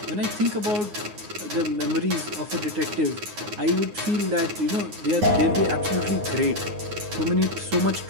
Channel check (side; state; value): left; late; 9.5 ms